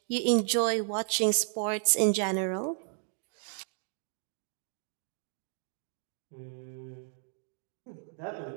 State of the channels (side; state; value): left; silent; 56 dB below the other